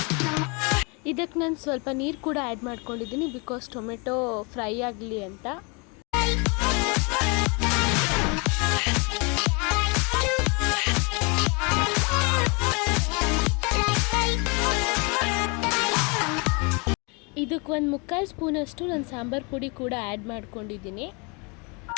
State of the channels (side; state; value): right; quieter; 31.6 dB